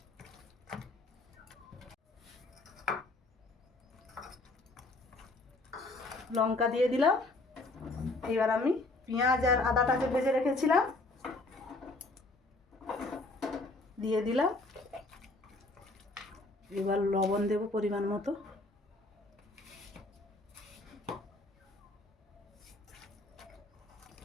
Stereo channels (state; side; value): quieter; right; 3.0 dB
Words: লঙ্কা দিয়ে দিলাম, এবার আমি পেঁয়াজ আর আদাটা যে ভেজে রেখেছিলাম দিয়ে দিলাম। এবার লবণ দেব পরিমাণ মতো।